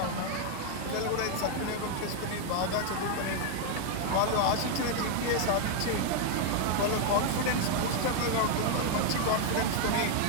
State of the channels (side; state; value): both; different; correlation 0.00